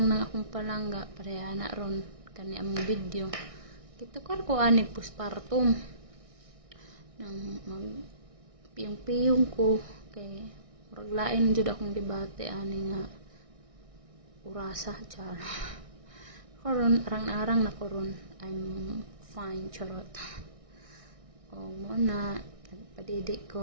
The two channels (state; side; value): late; left; 1.6 ms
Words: ng akong palangga, pareha na ron, kani among video. Kitukar ko anig postpartum. Nang magpiyong-piyong ko, kay muraglain jud akong debate, ani nga, urasa, char. Karon, arang-arang na koron, I'm fine, charot. O muna, nagpadidik